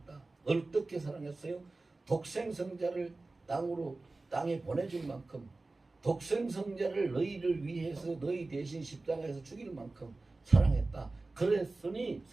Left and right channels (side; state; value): left; quieter; 3.3 dB